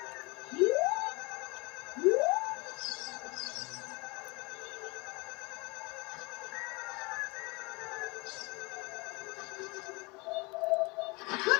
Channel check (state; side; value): quieter; right; 26.9 dB